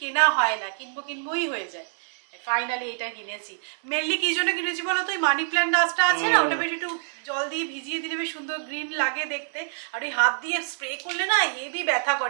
কেনা হয় না, কিনবো কিনবোই হয়ে যায়। ফাইনালি এটা কিনেছি। মেনলি কি জন্য কিনেছি বলো তো, ওই মানি প্ল্যান্ট গাছটা আছে না, ওটা বেশ একটু জল দিয়ে ভিজিয়ে দিলে বেশ সুন্দর গ্রিন লাগে দেখতে। আর ওই হাত দিয়ে স্প্রে করলে না হেভি ব্যথা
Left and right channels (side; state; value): left; silent; digital silence